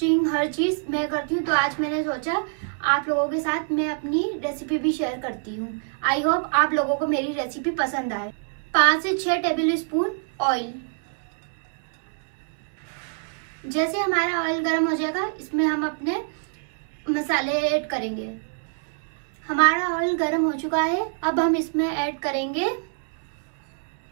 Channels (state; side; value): silent; left; 61 dB below the other